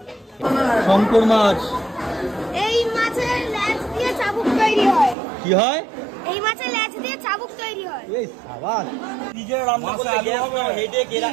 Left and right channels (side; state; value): left; drops out; at 5.2 s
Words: শঙ্কর মাছ। এই মাছের লেজ দিয়ে চাবুক তৈরি হয়। কি হয়? এই মাছের লেজ দিয়ে চাবুক তৈরি হয়। এই সাবাস। নিজে রান্না করতে গ্যাস না, হেডে একে